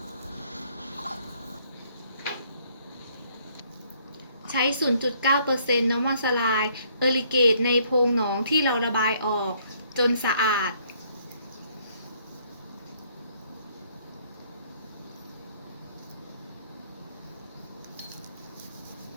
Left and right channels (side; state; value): both; inverted; correlation -0.65